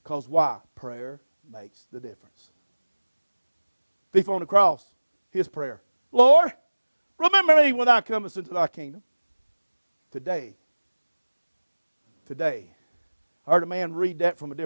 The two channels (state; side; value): inverted; both; correlation -1.00